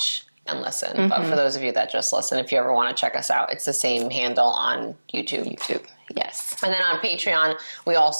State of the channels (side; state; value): both; inverted; correlation -1.00